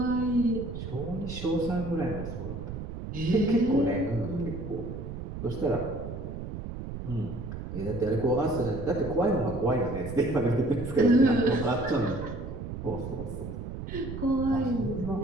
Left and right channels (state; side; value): noise; right; rumble, 7 dB below the sound